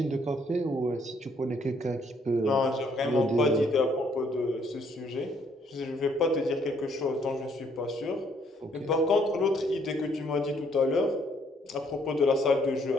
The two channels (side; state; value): both; normal; correlation 0.67